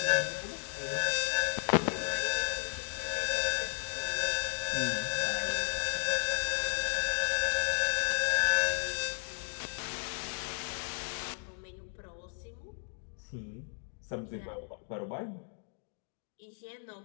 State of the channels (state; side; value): silent; right; digital silence